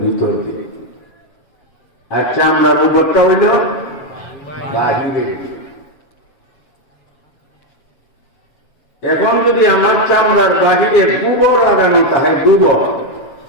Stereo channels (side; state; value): right; late; 7.2 ms